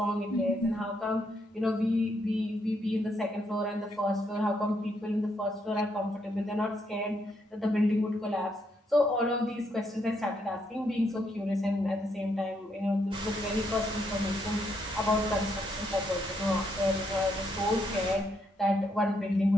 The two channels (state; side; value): normal; both; correlation 0.76